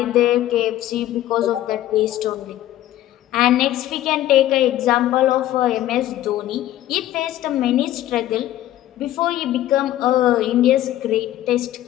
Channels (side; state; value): right; quieter; 13.6 dB